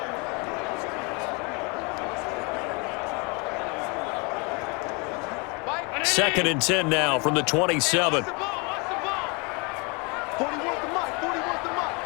Second and 10 now from the 27.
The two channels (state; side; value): quieter; right; 30.5 dB